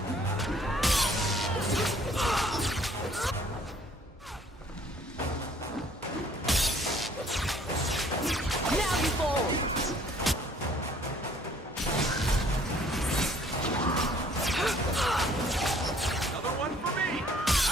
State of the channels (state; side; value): normal; both; correlation 0.59